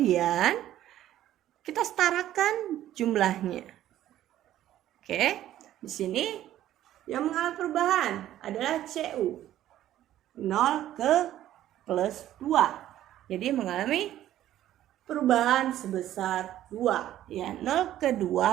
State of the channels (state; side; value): quieter; left; 12.8 dB